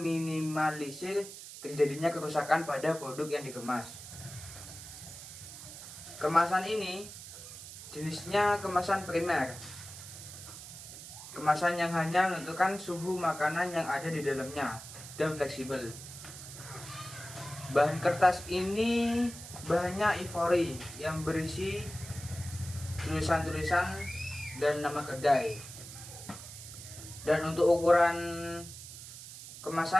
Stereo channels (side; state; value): right; noise; hiss, 13 dB below the sound